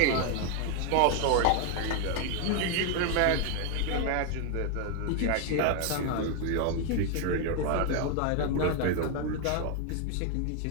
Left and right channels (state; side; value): different; both; correlation 0.01